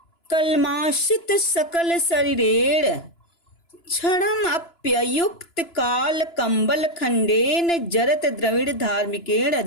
कलमाशित सकल शरीरेण क्षणम अप्ययुक्त काल कंबल खंडेन जरत द्रविड़ धार्मिकेण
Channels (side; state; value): right; late; 2.9 ms